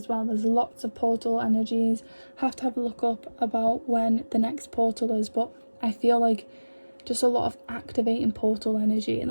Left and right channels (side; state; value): both; inverted; correlation -1.00